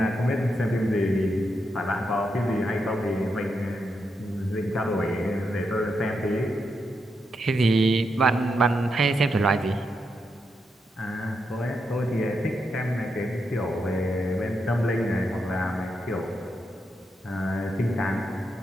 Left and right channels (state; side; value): normal; both; correlation 0.83